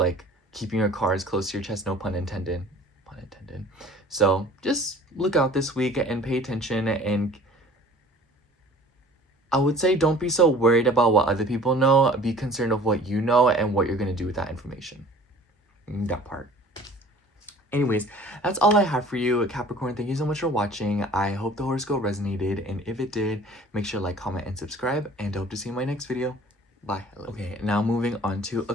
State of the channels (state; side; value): normal; both; correlation 0.48